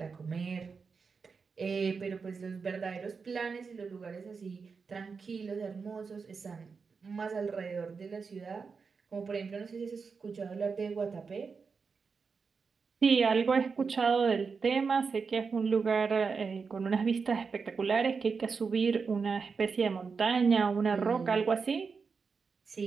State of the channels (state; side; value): quieter; left; 5.2 dB